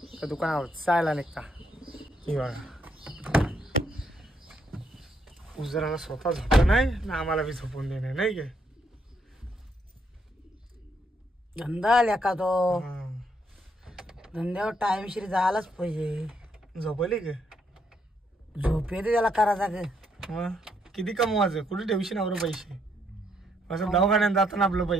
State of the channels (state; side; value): normal; both; correlation 0.74